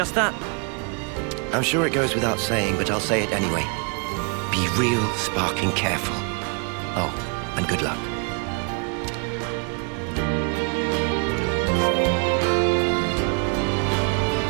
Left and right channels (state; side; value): quieter; left; 36.5 dB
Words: that. I'm sure it goes without saying, but I'll say it anyway. Be real sparking careful. Oh, and good luck.